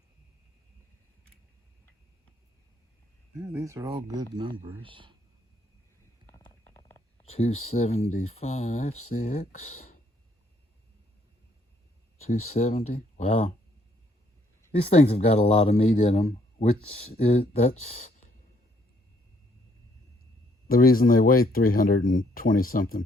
Yeah, these are all good numbers. 275, 6. 270. Wow. These things have got a lot of meat in them, that's the reason they weigh 320 something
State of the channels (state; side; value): normal; both; correlation 0.68